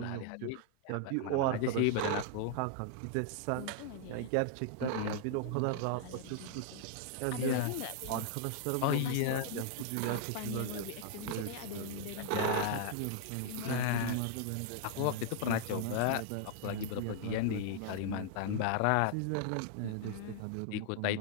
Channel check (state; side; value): different; both; correlation -0.01